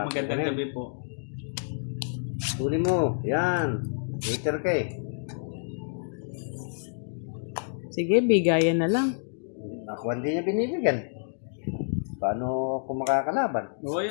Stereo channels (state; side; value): silent; right; digital silence